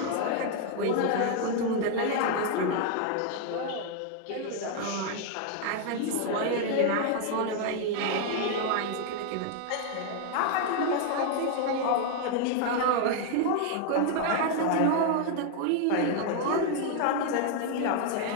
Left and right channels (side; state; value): both; different; correlation 0.00